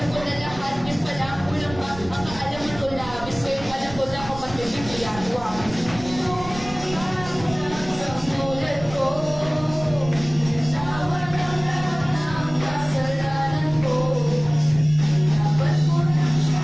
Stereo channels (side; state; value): right; noise; rumble, 14 dB below the sound